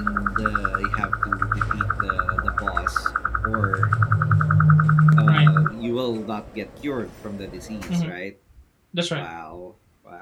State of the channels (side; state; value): both; identical; correlation 1.00